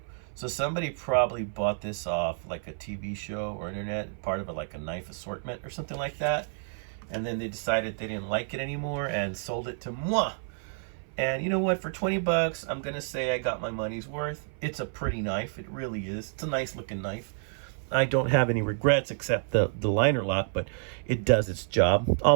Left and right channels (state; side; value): silent; left; 55 dB below the other